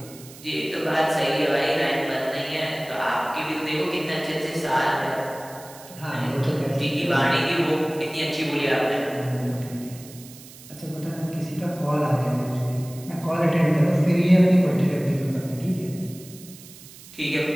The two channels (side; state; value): right; noise; hiss, 19 dB below the sound